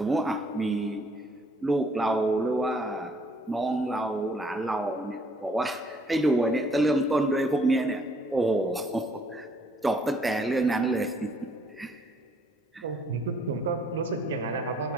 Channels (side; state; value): both; normal; correlation 0.64